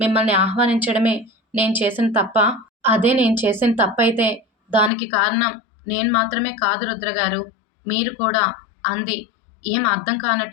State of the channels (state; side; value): drops out; right; at 4.9 s